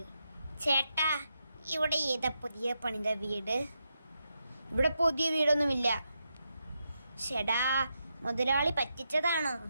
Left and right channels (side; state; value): both; inverted; correlation -0.84